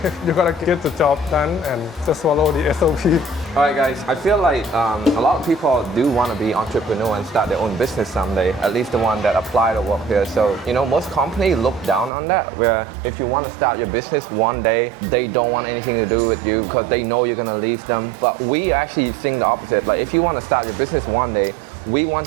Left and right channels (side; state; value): left; drops out; at 12.1 s